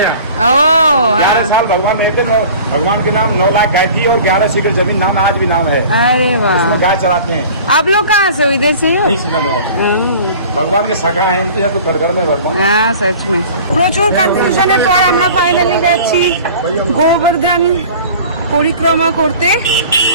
हैं। ओ 11 साल भगवान रहते, भगवान के नाम 9 लाख गाय थी और 11 सीकर जमीन नाम आज भी नाम है। अरे वाह। इसमें गाय चराते हैं। आप लोग कहाँ से हो? इधर से ही हो? नहीं सुना भगवान के सखा है तो घर घर में भगवान। হ্যাঁ, सच में। প্রচুর কনফিউশনের পর আমরা ফাইনালি যাচ্ছি গোবর্ধন পরিক্রমা করতে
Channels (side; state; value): both; inverted; correlation -0.43